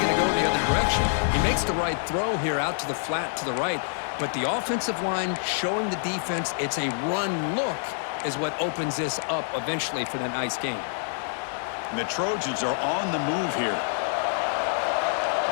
going to go the other direction. He makes the right throw here out to the flat to the right, but the offensive line showing the defense it's a run look is what opens this up eventually for the nice game. And the Trojans are on the move here.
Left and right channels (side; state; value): right; silent; 56 dB below the other